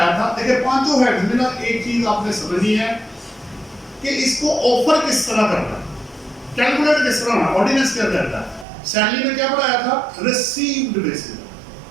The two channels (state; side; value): drops out; left; at 8.7 s